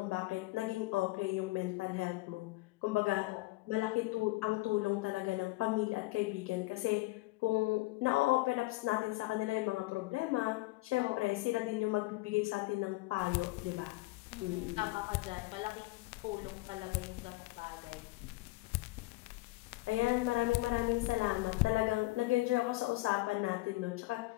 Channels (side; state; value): right; quieter; 21.1 dB